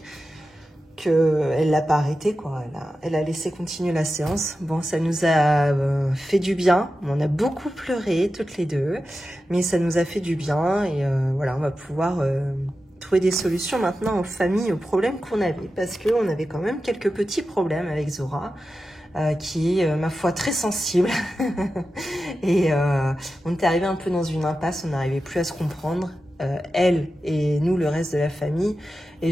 qu'elle l'a pas arrêté, quoi. Elle a laissé continuer la séance. Bon, ça nous a fait du bien. On a beaucoup pleuré, toutes les deux. Mais ça nous a fait du bien. Et voilà, on va pouvoir trouver des solutions maintenant aux familles, aux problèmes qu'on avait. Parce qu'on avait quand même quelques petits problèmes avec Zora. Qui est, ma foi, très sensible. Et on était arrivé un peu dans une impasse. On n'arrivait plus à se comprendre. Elle et nous, le reste de la famille.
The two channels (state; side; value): normal; both; correlation 0.92